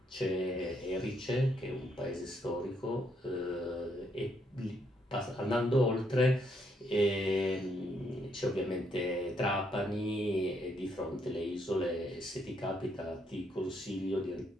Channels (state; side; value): normal; both; correlation 0.74